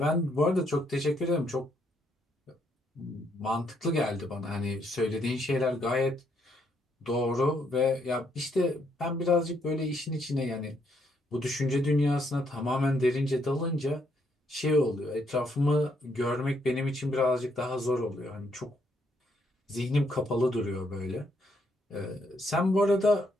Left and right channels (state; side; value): normal; both; correlation 0.73